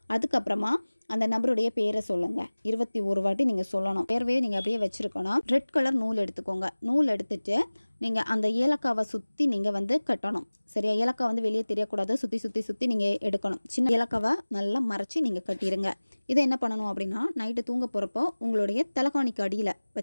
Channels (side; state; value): both; inverted; correlation -1.00